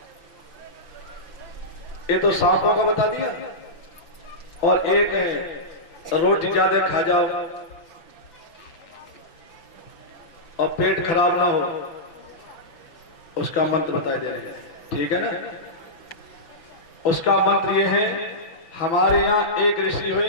ये तो सांपों का बता दिया, और एक है रोटी ज्यादा खा जाओ और पेट खराब ना हो, उसका मंत्र बताए दे रहे हैं, ठीक है ना। उसका मंत्र ये है, हमारे यहाँ एक ऋषि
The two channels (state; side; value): late; right; 6.0 ms